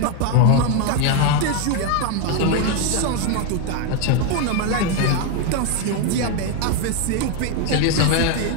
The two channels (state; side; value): different; both; correlation 0.01